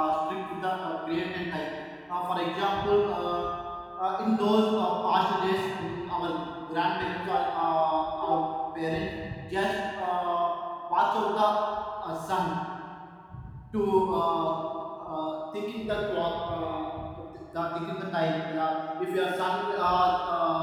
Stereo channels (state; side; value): identical; both; correlation 1.00